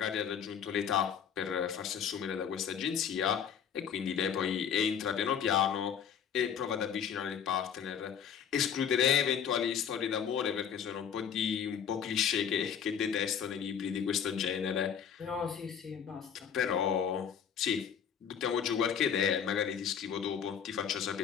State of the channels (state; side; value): quieter; right; 8.0 dB